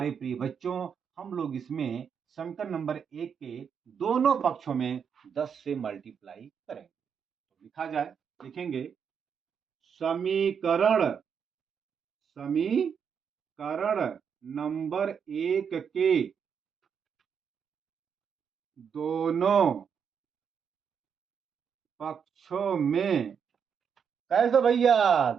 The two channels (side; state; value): left; quieter; 7.1 dB